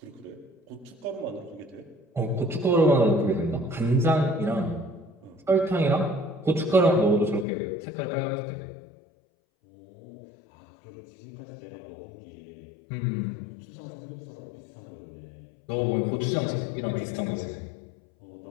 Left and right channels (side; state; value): right; drops out; at 7.5 s